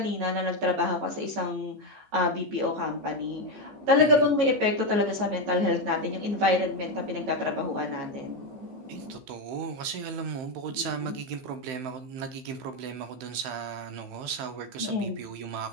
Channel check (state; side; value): late; left; 15 ms